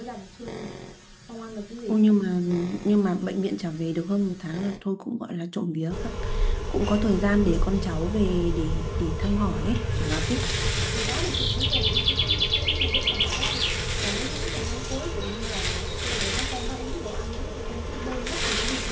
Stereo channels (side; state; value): both; identical; correlation 1.00